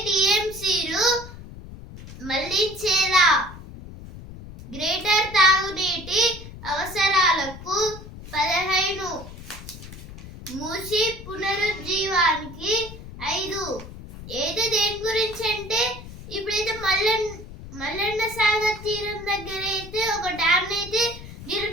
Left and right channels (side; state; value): left; noise; rumble, 14 dB below the sound